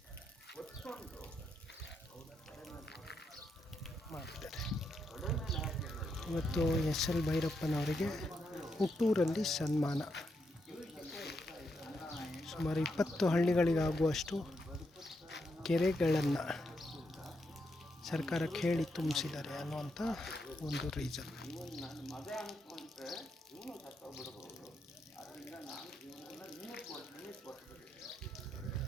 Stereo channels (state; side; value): normal; both; correlation 0.81